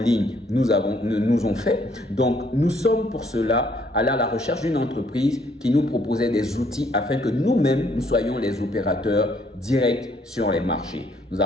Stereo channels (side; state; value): both; normal; correlation 0.66